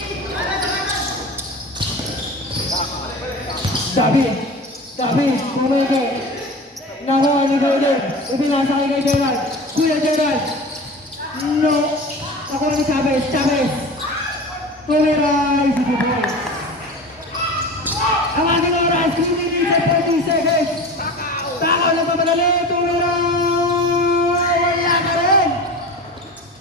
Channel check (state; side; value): normal; both; correlation 0.33